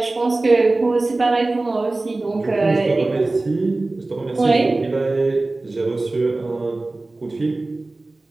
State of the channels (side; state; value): left; quieter; 3.1 dB